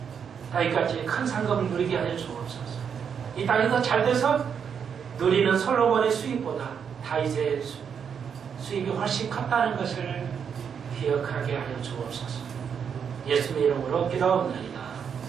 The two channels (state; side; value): quieter; left; 7.2 dB